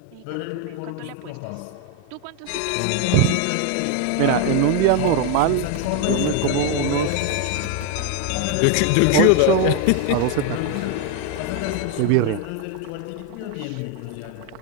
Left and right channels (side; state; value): both; different; correlation 0.01